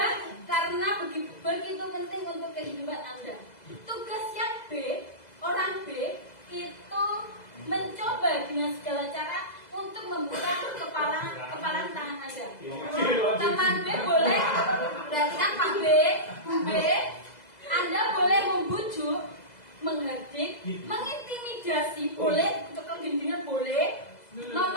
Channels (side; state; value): right; late; 2.0 ms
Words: karena begitu penting untuk kehidupan Anda. Tugasnya B, orang B itu mencoba dengan segala cara untuk membuka kepalan tangan Anda. Teman